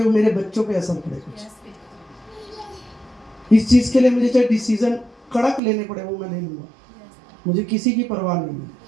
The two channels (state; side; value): drops out; left; at 5.6 s